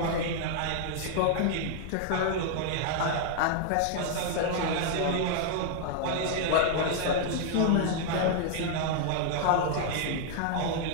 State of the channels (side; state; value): both; different; correlation 0.00